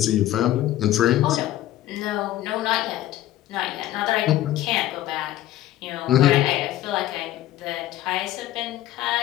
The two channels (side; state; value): right; quieter; 14.0 dB